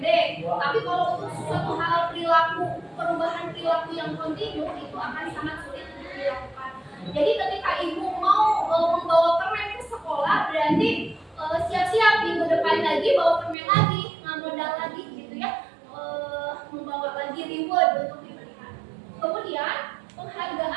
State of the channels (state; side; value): drops out; left; at 13.6 s